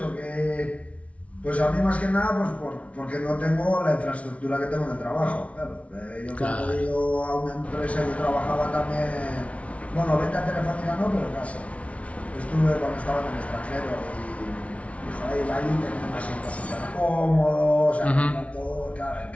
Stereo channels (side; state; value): right; late; 0.064 ms